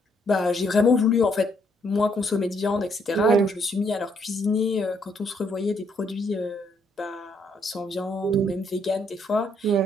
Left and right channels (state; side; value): normal; both; correlation 0.71